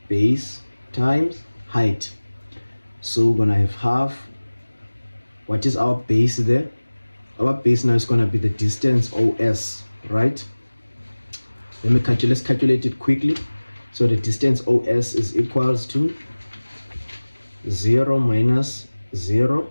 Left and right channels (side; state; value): both; inverted; correlation -1.00